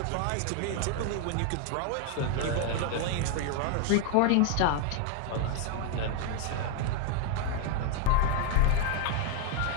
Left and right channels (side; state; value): both; different; correlation 0.00